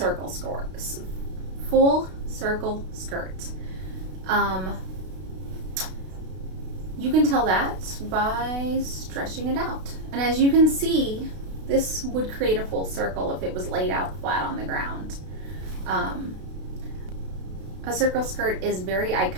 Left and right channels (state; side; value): late; left; 32 ms